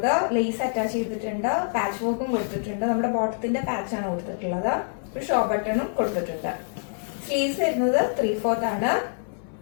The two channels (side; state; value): right; silent; digital silence